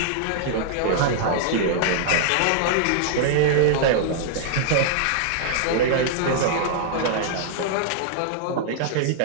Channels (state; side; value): different; both; correlation -0.01